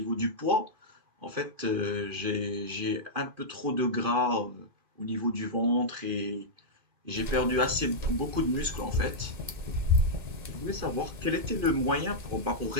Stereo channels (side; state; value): left; late; 2.5 ms